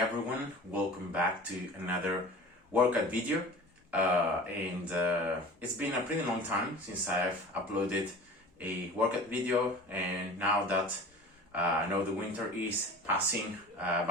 welcome back to another workout video. It's been a pretty long time since I've uploaded a workout video, and now that I know the winter is passing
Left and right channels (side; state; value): both; normal; correlation 0.39